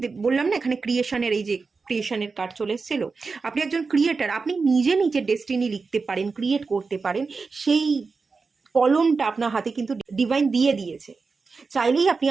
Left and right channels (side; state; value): left; quieter; 4.5 dB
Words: বললাম না, এখানে ক্রিয়েশনের এই যে ক্রিয়েশনের কার্ড চলে এসেছিল, আপনি একজন ক্রিয়েটার, আপনি নিজে নিজের ডেস্টিনি লিখতে পারেন, ক্রিয়েট করতে পারেন। সেই কলমটা আপনার হাতে কিন্তু ডিভাইন দিয়ে দিয়েছে। চাইলেই আপনি